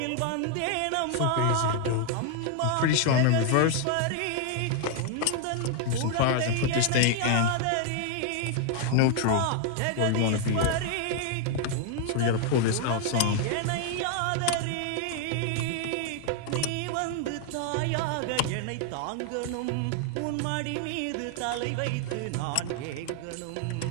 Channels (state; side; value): different; both; correlation 0.00